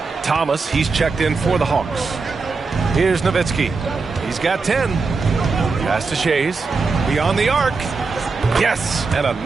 Thomas, he's checked in for the Hawks. Here's Nowitzki. He's got 10. Pass to Shays. Beyond the arc. Yes, and a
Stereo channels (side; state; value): left; quieter; 4.4 dB